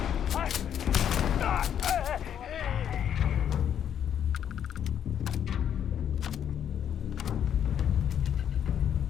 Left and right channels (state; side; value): quieter; right; 9.2 dB